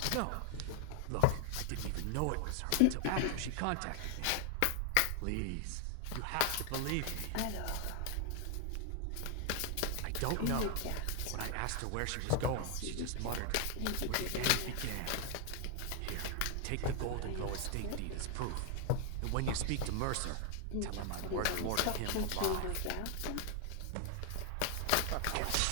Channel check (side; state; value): both; different; correlation 0.00